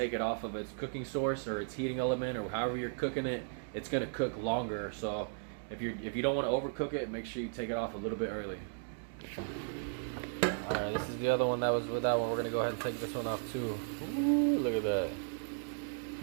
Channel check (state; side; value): silent; left; digital silence